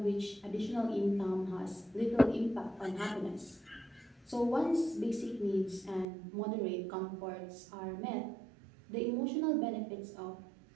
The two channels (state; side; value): drops out; left; at 6.1 s